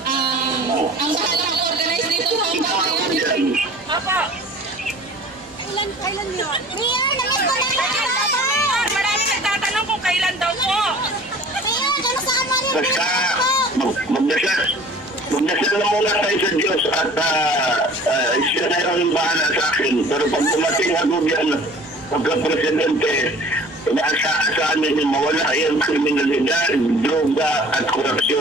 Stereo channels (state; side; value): normal; both; correlation 0.47